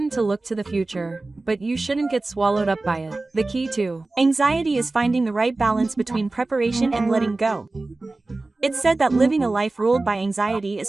to look to the future, but you shouldn't get swallowed up by it. The key to anxiety is finding the right balance between preparation and letting go. It's said that living a life ruled by anxiety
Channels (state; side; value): quieter; left; 3.2 dB